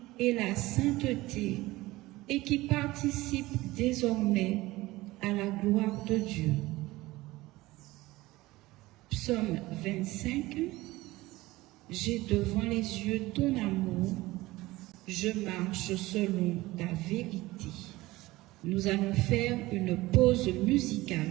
et la sainteté et qui participent désormais à la gloire de Dieu. Psaume 25, j'ai devant les yeux ton amour, je marche selon ta vérité. Nous allons faire une pause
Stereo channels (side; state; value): left; quieter; 19.0 dB